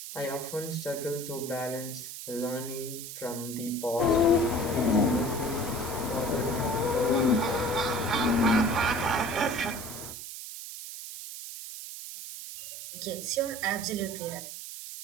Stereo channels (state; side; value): noise; right; hiss, 9 dB below the sound